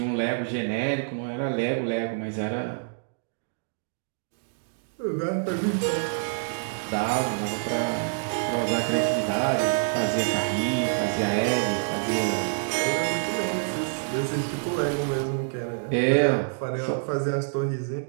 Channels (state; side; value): silent; left; digital silence